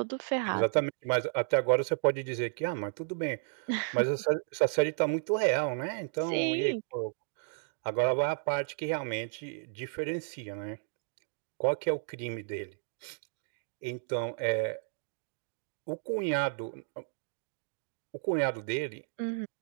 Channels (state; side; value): silent; left; digital silence